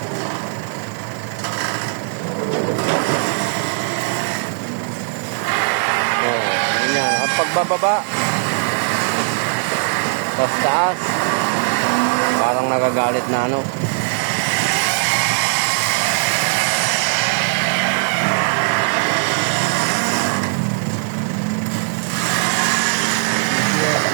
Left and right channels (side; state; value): left; silent; digital silence